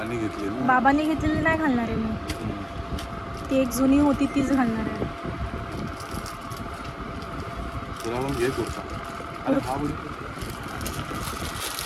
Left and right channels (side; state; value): both; identical; correlation 1.00